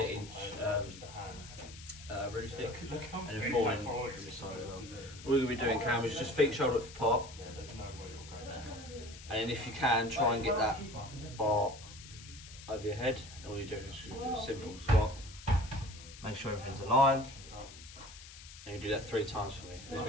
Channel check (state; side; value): noise; left; hiss, 16 dB below the sound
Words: root stick, and then 4 in from this side as well. All you're going to be doing, Cam, is just feet shoulder width apart. And then if you can, try and get that bar over your head. And all you're doing is do a simple squat. Make sure everything's aligned. And you do that 3 times for me. There's